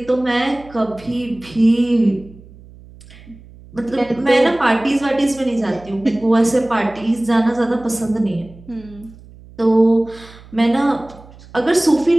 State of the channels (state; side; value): noise; right; hum, 22 dB below the sound